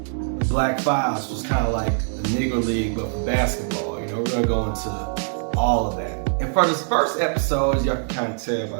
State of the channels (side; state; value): left; silent; digital silence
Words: the Black Fives was kind of like the Negro League but for basketball. We're going to go into all of that. And for this first episode, as y'all can kind of tell by